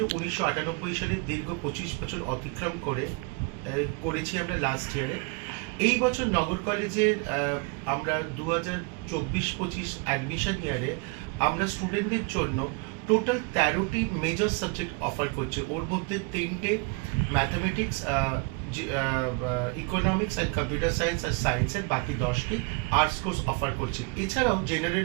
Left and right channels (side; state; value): left; quieter; 29.5 dB